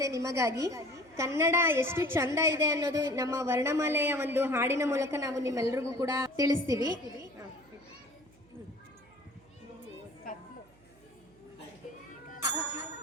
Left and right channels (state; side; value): noise; right; hum, 28 dB below the sound